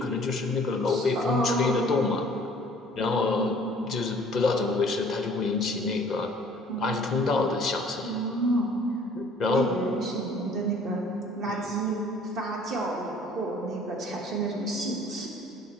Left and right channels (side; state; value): both; normal; correlation 0.54